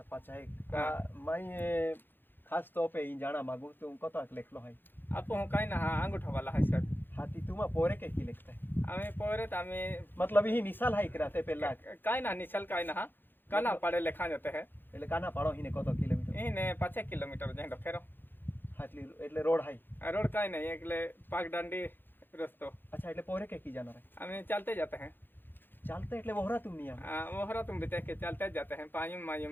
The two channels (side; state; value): right; late; 0.097 ms